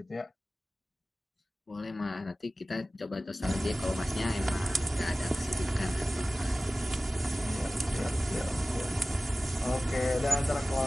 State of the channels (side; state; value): both; normal; correlation 0.97